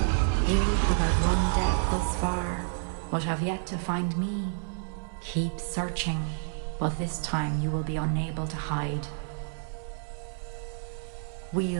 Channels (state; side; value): silent; left; 58 dB below the other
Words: You who have run death thus far, but have yet to find me. Keep searching, but this time you will be unable to hide.